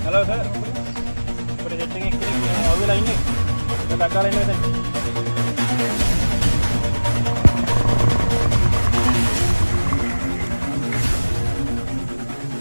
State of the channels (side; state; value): both; inverted; correlation -1.00